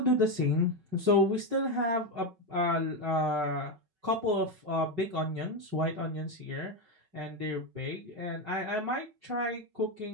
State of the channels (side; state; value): left; late; 5.3 ms